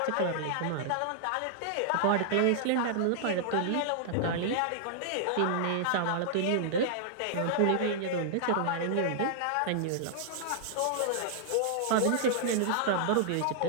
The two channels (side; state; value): both; different; correlation -0.01